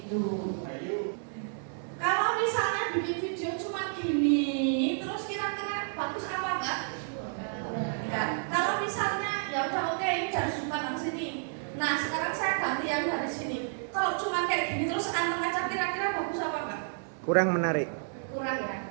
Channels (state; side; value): silent; left; 57 dB below the other